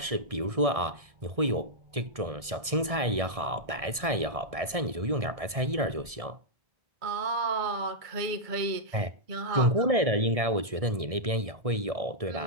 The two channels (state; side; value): late; left; 1.6 ms